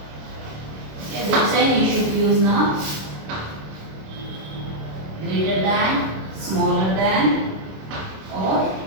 Okay, which sign you should use now? Greater than, smaller than, or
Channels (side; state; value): left; late; 26 ms